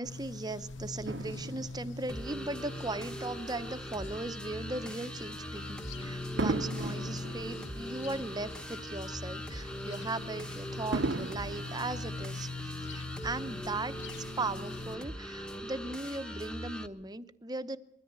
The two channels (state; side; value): normal; both; correlation 0.56